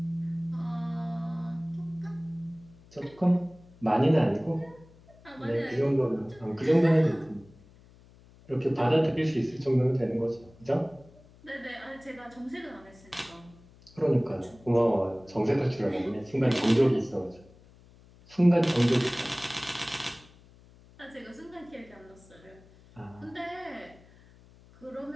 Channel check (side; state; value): left; noise; hum, 25 dB below the sound